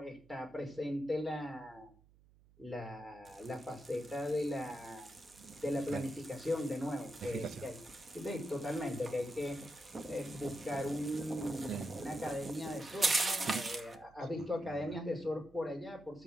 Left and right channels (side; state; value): right; noise; hum, 27 dB below the sound